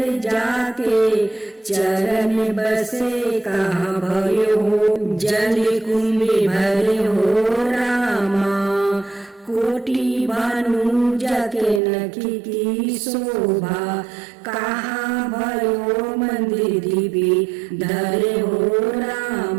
जाके चरण बसे, कहाँ भयो हो जल कुंभ भरे हो रामा। कोटि भानु जाके नखी की शोभा, कहाँ भयो मंदिर दिव्य धरे हो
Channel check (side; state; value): left; drops out; at 11.8 s